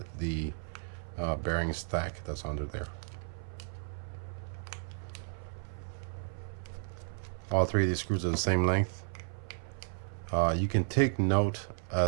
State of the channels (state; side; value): silent; left; 55 dB below the other